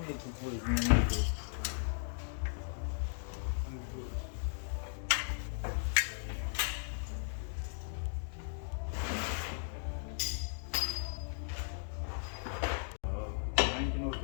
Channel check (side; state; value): right; silent; digital silence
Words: need to put it in the middle.